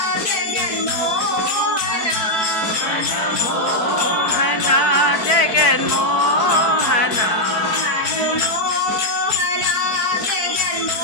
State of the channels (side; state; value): right; late; 4.6 ms